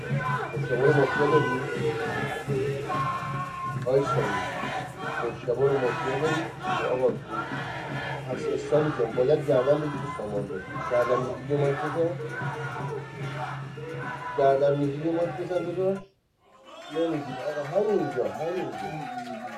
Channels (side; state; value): both; identical; correlation 1.00